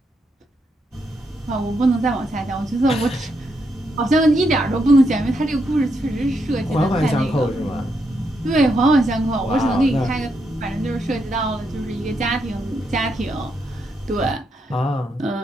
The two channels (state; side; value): normal; both; correlation 0.80